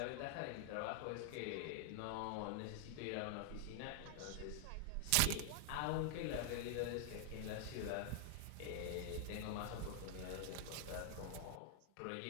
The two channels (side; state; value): both; different; correlation 0.00